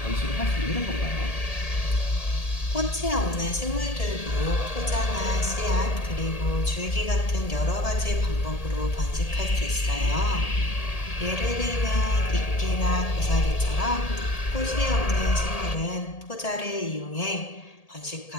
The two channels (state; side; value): late; right; 1.8 ms